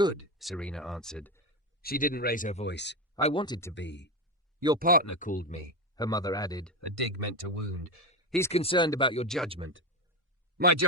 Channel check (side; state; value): both; normal; correlation 0.15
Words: Serena answered. She didn't raise her voice. "I wanted to be." "Your partner called me," her mother added, a dig meant to wound. "He's concerned about your judgment." "My